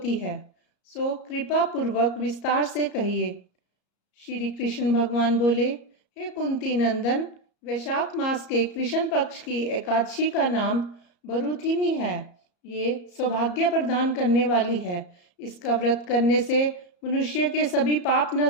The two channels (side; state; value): right; late; 34 ms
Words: है, सो कृपा पूर्वक विस्तार से कहिए। श्री कृष्ण भगवान बोले, हे कुंती नंदन, वैशाख मास के कृष्ण पक्ष की एकादशी का नाम बरूथिनी है। ये सौभाग्य प्रदान करने वाली है। इसका व्रत करने से मनुष्य के सभी पाप